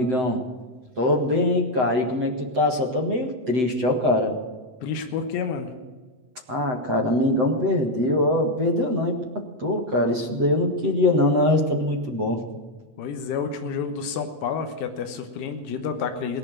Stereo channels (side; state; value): left; late; 7.9 ms